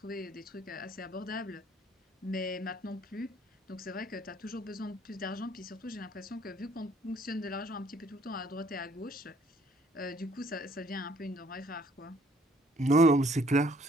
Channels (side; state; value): both; normal; correlation 0.61